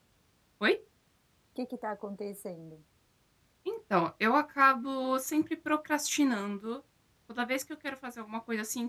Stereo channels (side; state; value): both; identical; correlation 1.00